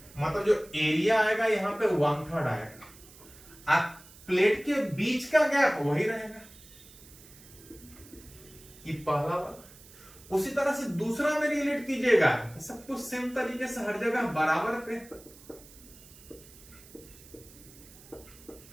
मतलब जो एरिया आएगा यहां पे 1/3 आएगा। अब प्लेट के बीच का गैप वही रहेगा, ये पहला वाला। उसी तरह से दूसरा में रिलेट कीजिएगा, सब कुछ सेम तरीके से हर जगह बराबर पे।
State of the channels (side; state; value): right; noise; hiss, 21 dB below the sound